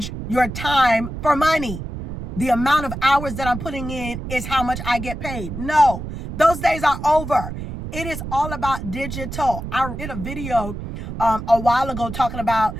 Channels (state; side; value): noise; right; rumble, 8 dB below the sound